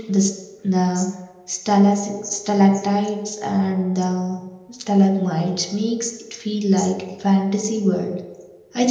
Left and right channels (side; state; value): both; identical; correlation 1.00